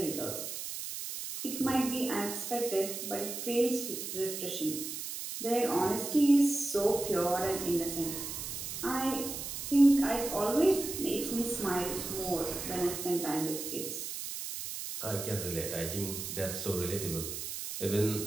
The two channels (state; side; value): noise; right; hiss, 6 dB below the sound